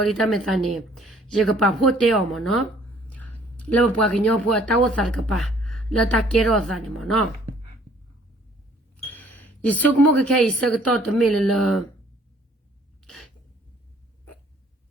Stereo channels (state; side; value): normal; both; correlation 0.59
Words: လီတမေသနေရေကပါဖို့တေအောင်မနော်လောဘကညောဖို့တာဝဆာကပါလတာကေရောဇာနေမနော်ဒီစုကမကခဲစကတော့တမေလ